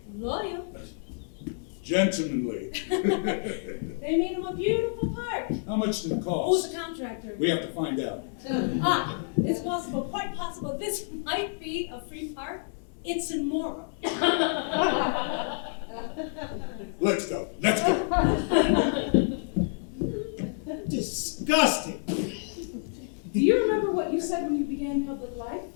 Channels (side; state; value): right; silent; digital silence